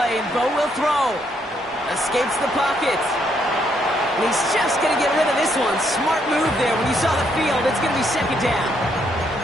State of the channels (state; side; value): normal; both; correlation 0.73